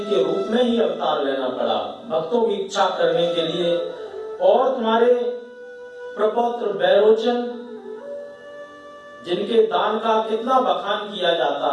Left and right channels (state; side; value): identical; both; correlation 1.00